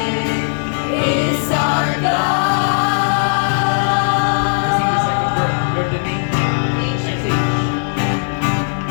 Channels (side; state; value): right; silent; 68 dB below the other